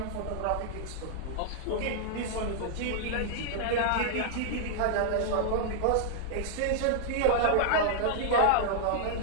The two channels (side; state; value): both; different; correlation -0.01